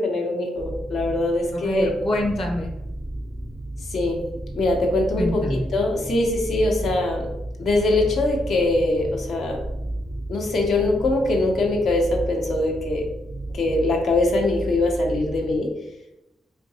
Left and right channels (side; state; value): both; normal; correlation 0.77